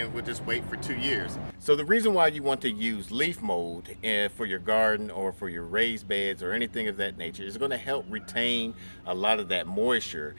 we'll just wait for 2 years. So the reason why you want to use leaf mold for your garden or for your raised beds or anything of that nature is going to help retain a lot of that moisture,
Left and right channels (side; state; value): both; inverted; correlation -1.00